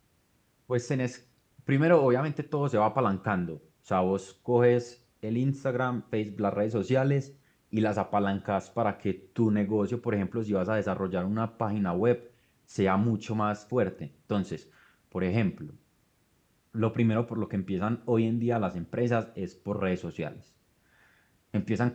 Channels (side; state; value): both; identical; correlation 1.00